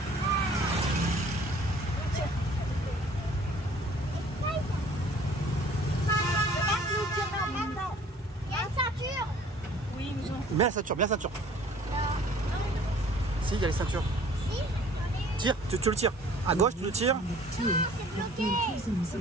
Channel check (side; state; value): both; normal; correlation 0.53